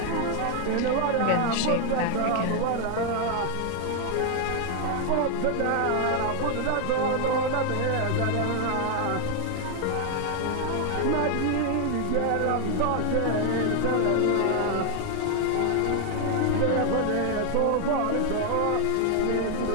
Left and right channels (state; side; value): different; both; correlation 0.00